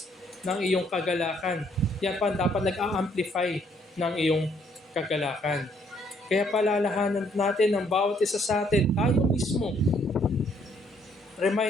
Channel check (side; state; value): both; normal; correlation 0.67